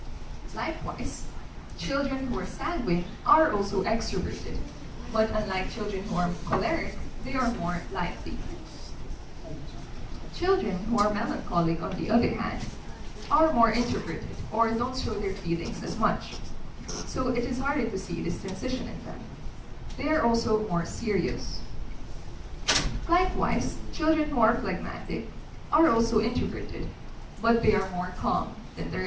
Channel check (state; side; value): identical; both; correlation 1.00